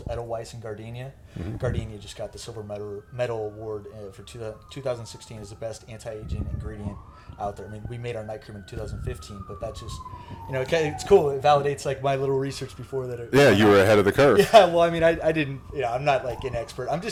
Edelweiss and Gardenia. Gardenia just got the silver medal award for 2016 as the best anti-aging ingredient out there. I mean, we made our night cream in 2015, but that just, it's cool. It validates like my little research before that. Yeah, you were ahead of the curve. Yeah, well, I mean, I didn't, I'm not like an expert. I'm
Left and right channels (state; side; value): identical; both; correlation 1.00